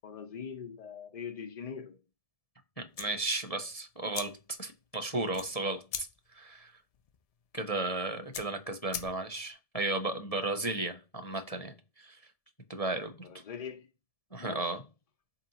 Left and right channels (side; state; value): right; late; 1.7 ms